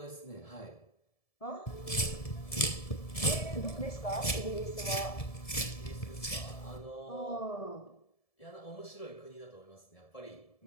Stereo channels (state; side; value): late; right; 1.7 ms